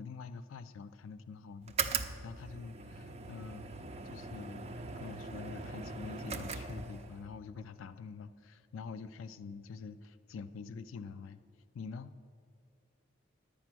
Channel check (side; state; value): both; normal; correlation 0.28